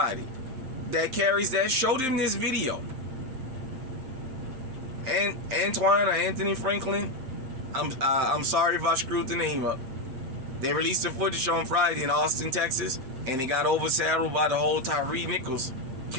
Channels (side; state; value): left; late; 7.7 ms